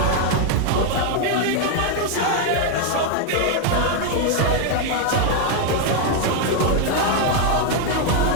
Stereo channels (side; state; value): both; different; correlation 0.01